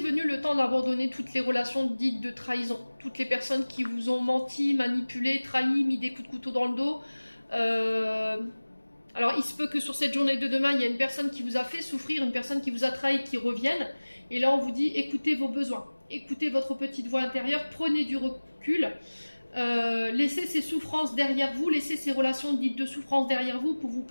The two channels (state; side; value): inverted; both; correlation -1.00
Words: le temps d'abandonner toutes les relations dites de trahison. Toutes les personnes qui vous ont menti, manipulé, trahi, mis des coups de couteau dans le dos. Alors, il se peut que sur cette journée de demain, il y a une personne qui vous a fait souffrir, une personne qui vous a trahi, qui revienne. Et là, on vous dit, écoutez vos besoins. Écoutez votre petite voix intérieure, prenez du recul. Laissez ces souffrances derrière vous, laissez ces relations dites de souffrance derrière vous pour vous